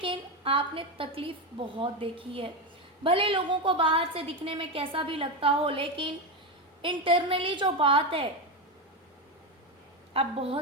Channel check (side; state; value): both; normal; correlation 0.13